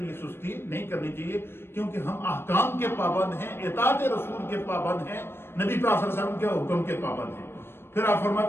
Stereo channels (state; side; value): late; right; 0.11 ms